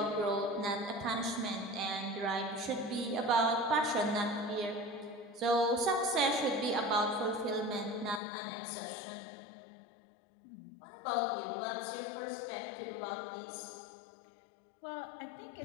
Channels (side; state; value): right; drops out; at 8.2 s